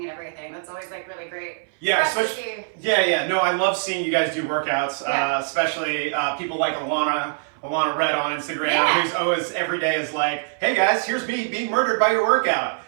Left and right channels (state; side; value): silent; left; 59 dB below the other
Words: and everything. That's always like really great. Yeah, especially. Yeah. No, I love seeing you guys do workouts. Yeah. Especially people like Alana Red on Instagram, Yeah. who's always every day is like, "Hey guys, here's me being murdered by your workout."